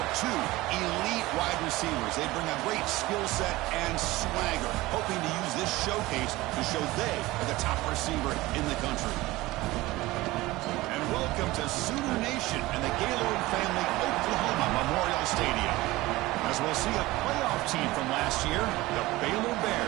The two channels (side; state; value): left; quieter; 19.2 dB